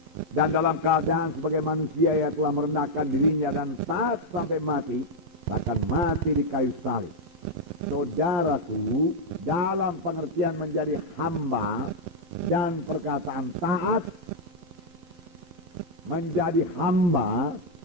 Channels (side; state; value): left; late; 11 ms